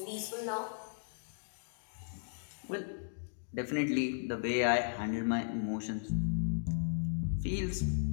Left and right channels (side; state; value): right; silent; digital silence